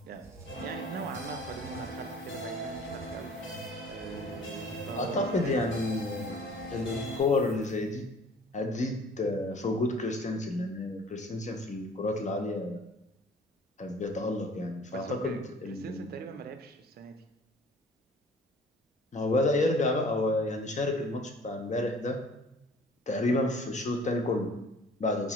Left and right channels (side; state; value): both; normal; correlation 0.50